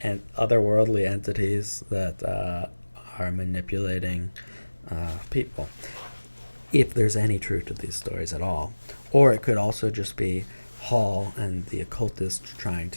and otherworldly entities that are manipulating people, if there's any truth to these stories at all. Or it could also just be Hall and the occultists trying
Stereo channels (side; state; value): both; inverted; correlation -1.00